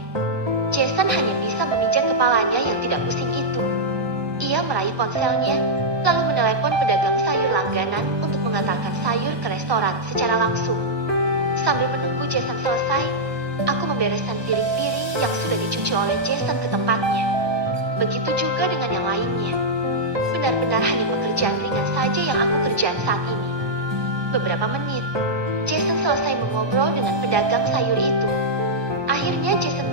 Jason hanya bisa memijat kepalanya yang tidak pusing itu. Ia meraih ponselnya, lalu menelepon pedagang sayur langganan untuk mengantarkan sayur ke restoran secara langsung. Sambil menunggu Jason selesai, aku membereskan piring-piring yang sudah dicuci oleh Jason ke tempatnya. Begitu juga dengan yang lainnya. Benar-benar hanya pekerjaan ringan saja yang aku kerjakan saat ini. Beberapa menit, Jason selesai mengobrol dengan pedagang sayur itu. Akhirnya Jason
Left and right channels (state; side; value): late; left; 1.2 ms